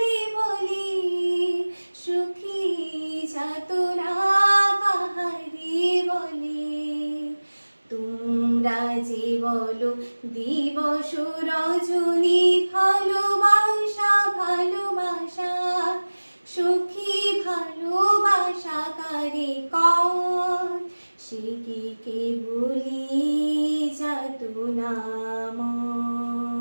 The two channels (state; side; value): inverted; both; correlation -1.00